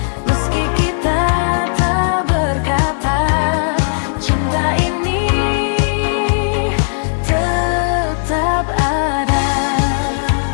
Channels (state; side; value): silent; right; digital silence